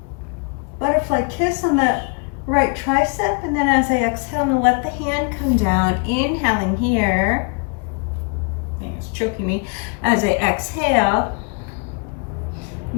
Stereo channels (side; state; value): right; quieter; 34.9 dB